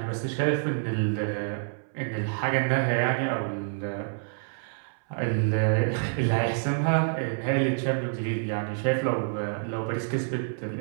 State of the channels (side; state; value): left; silent; 60 dB below the other